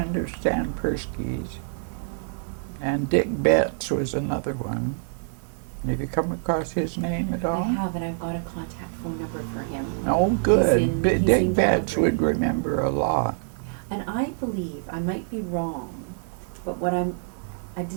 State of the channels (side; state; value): left; silent; digital silence